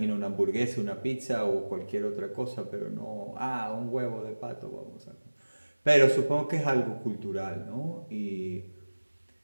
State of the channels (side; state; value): both; inverted; correlation -1.00